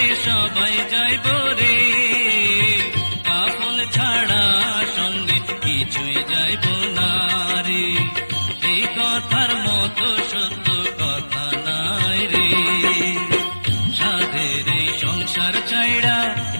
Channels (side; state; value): both; inverted; correlation -1.00